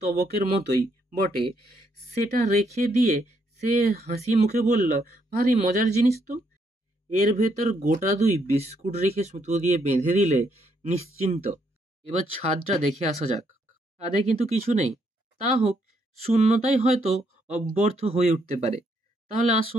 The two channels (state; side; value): normal; both; correlation 0.74